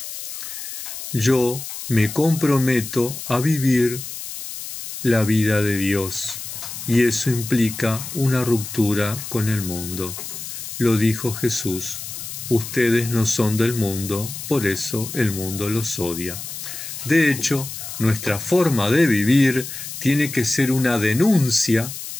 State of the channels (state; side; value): noise; left; hiss, 9 dB below the sound